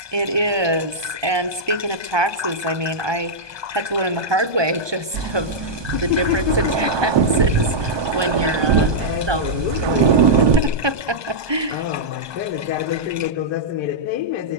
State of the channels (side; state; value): left; late; 1.2 ms